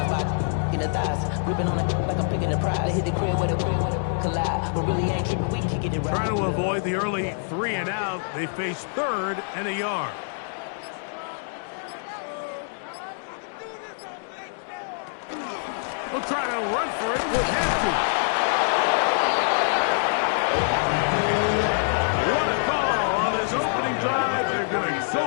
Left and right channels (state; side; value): silent; right; digital silence